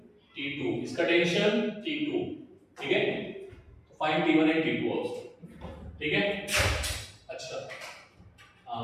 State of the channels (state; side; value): identical; both; correlation 1.00